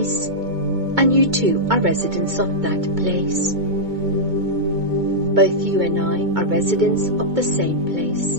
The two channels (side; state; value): left; late; 2.2 ms